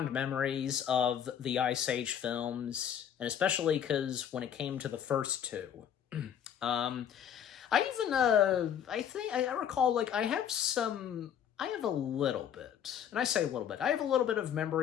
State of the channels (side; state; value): right; quieter; 9.1 dB